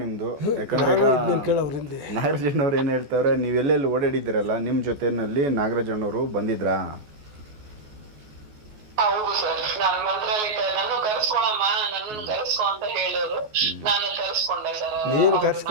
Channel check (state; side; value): late; left; 14 ms